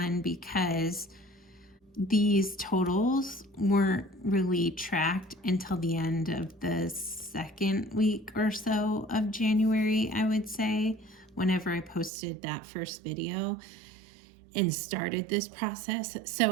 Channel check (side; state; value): left; drops out; at 12.1 s